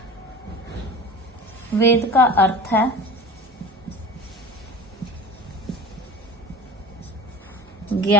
वेद का अर्थ है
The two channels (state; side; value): normal; both; correlation 0.37